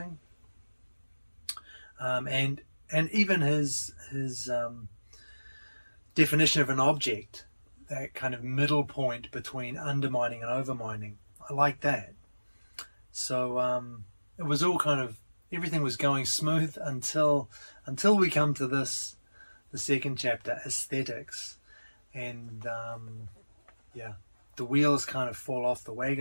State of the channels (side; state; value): both; inverted; correlation -1.00